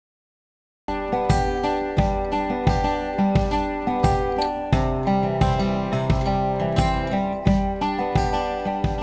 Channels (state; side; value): identical; both; correlation 1.00